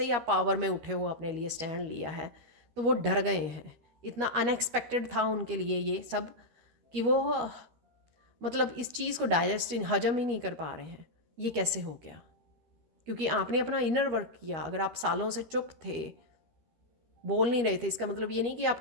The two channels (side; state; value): left; late; 13 ms